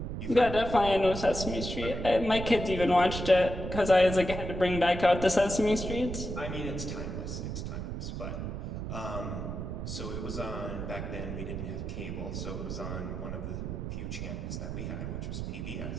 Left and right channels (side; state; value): right; noise; rumble, 5 dB below the sound